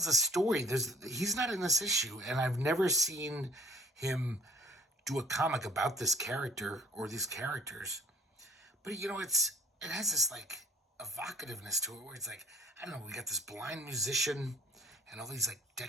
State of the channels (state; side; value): normal; both; correlation 0.53